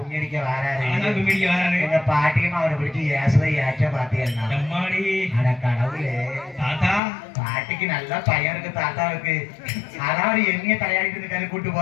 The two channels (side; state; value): right; drops out; at 7.0 s